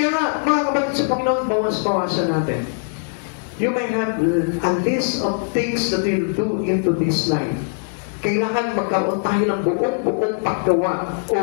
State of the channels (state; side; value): silent; right; 65 dB below the other